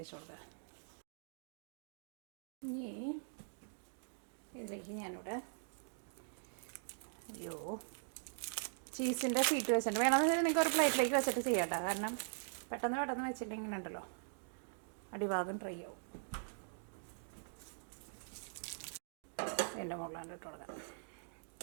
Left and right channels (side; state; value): left; silent; digital silence